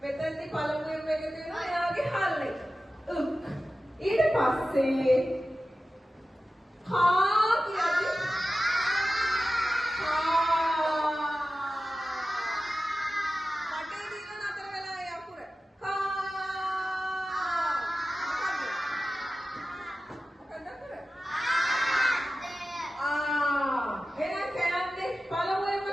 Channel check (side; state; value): both; normal; correlation 0.94